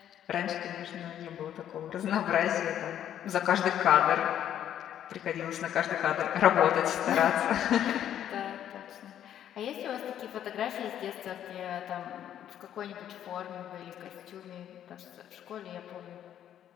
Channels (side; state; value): right; quieter; 10.5 dB